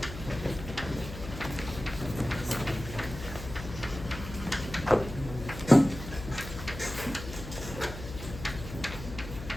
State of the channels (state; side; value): noise; left; hum, 10 dB below the sound